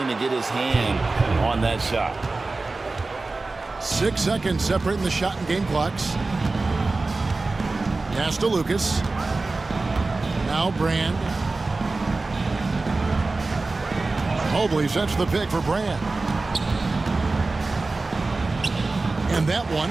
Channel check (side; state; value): left; quieter; 3.5 dB